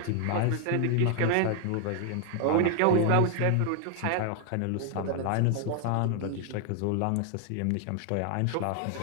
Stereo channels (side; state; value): both; different; correlation 0.00